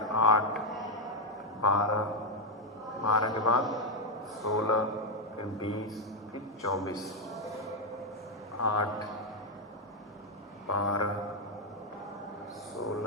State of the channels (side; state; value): both; normal; correlation 0.02